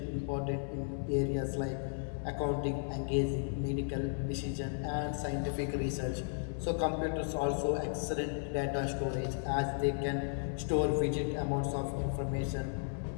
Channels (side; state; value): right; silent; 55 dB below the other